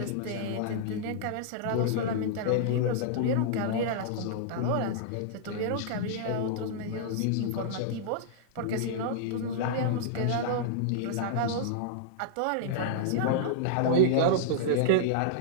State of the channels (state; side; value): different; both; correlation -0.02